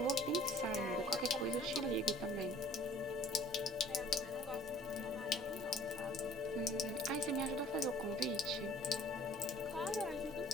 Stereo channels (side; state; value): both; normal; correlation 0.52